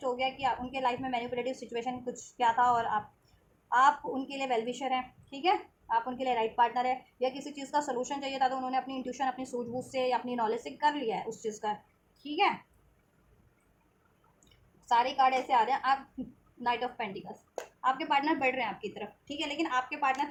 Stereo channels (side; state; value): both; identical; correlation 1.00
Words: हो गया कि उनके लाइफ में मैनिपुलेटिव सिचुएशन कुछ क्या था, और आप उनके लिए वेलविशर हैं। ठीक है, आप उनके लिए राइट पार्टनर है, या किसी चीज़ का सोल्यूशन चाहिए था तो उन्होंने अपनी इंट्यूशन, अपनी सूझबूझ से या अपनी नॉलेज से कर लिया है उस चीज़ का। ठीक है, सारे कार्ड ऐसे आ रहे हैं। आप नाइट ऑफ पेंटिकल्स, आपके पार्टनर बढ़ रहे हैं आपकी तरफ। ठीक है, लेकिन आपके